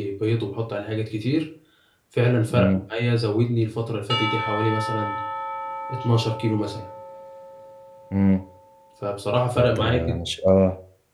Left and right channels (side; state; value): both; identical; correlation 1.00